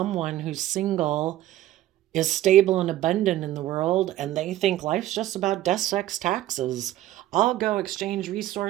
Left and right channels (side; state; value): left; quieter; 14.0 dB